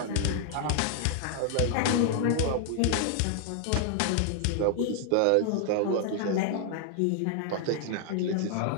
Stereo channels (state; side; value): different; both; correlation 0.00